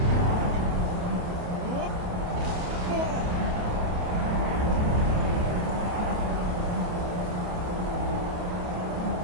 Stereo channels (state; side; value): late; left; 28 ms